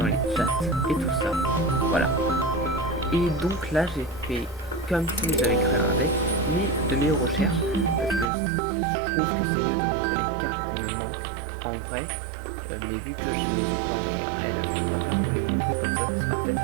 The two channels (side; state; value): left; drops out; at 8.2 s